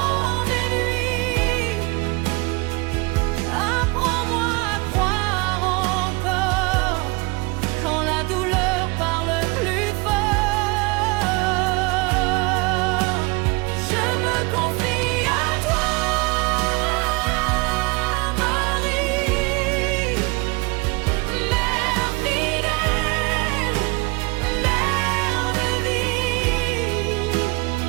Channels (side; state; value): left; quieter; 26.6 dB